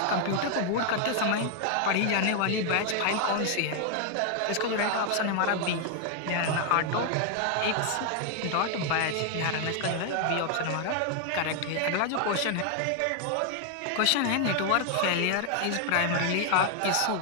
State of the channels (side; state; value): both; different; correlation 0.00